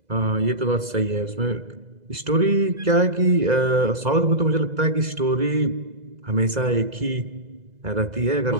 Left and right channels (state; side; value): late; left; 2.0 ms